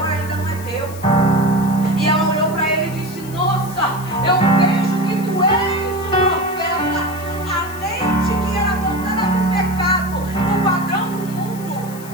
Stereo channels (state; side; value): noise; left; hiss, 17 dB below the sound